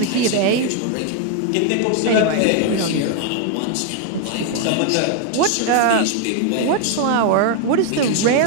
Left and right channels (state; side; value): different; both; correlation 0.01